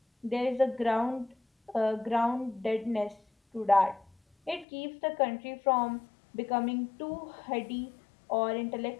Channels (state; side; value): drops out; right; at 4.7 s